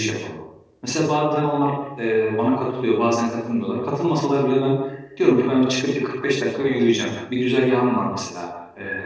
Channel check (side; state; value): both; identical; correlation 1.00